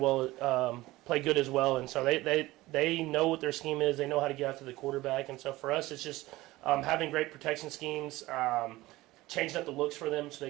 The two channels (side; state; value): left; quieter; 18.5 dB